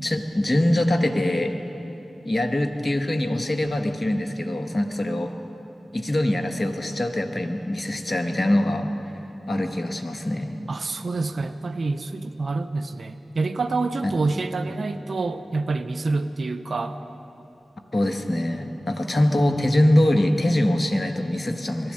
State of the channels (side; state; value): both; normal; correlation 0.96